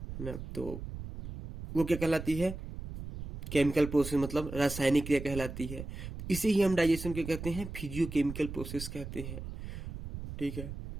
है ना, तो वो क्या कहलाती है? केमिकल प्रोसेस, मतलब रासायनिक क्रिया कहलाती है। इसे ही हम डाइजेशन के कहते हैं, फिजियोकेमिकल प्रोसेस कहते हैं। ठीक है,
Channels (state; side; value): noise; right; rumble, 9 dB below the sound